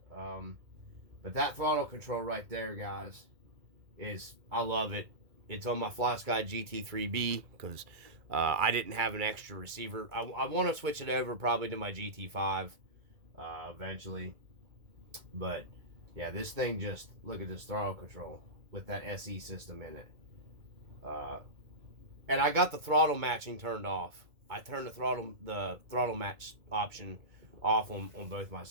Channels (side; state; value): left; late; 2.2 ms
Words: But that throttle control right there, guys, I love it. It's on my FlySky GT3B because I didn't have an extra receiver. I want to switch it over probably to my GT5 eventually. But yeah, this thing, just look at this throttle control with that SE system in it. And I got the throttle matching turned off. I turned the throttle match option off on both my